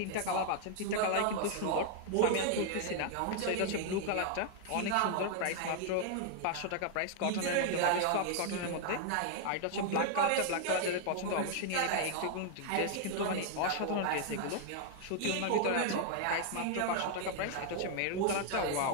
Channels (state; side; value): different; both; correlation 0.00